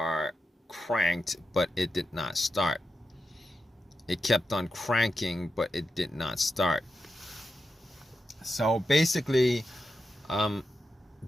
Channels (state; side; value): normal; both; correlation 0.88